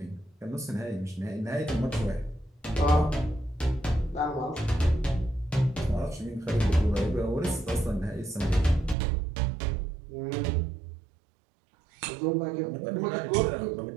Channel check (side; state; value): left; drops out; at 9.0 s